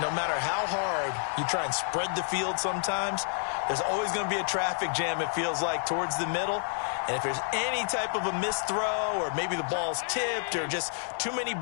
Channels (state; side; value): silent; right; digital silence